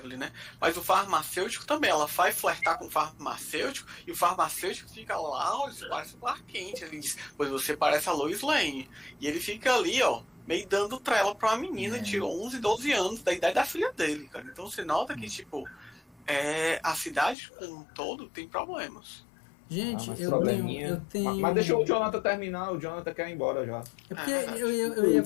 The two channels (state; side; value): drops out; right; at 17.4 s